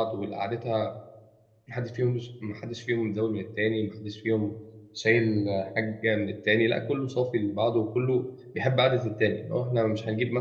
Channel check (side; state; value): both; identical; correlation 1.00